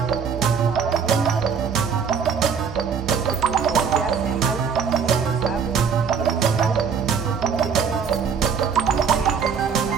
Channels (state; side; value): quieter; left; 6.5 dB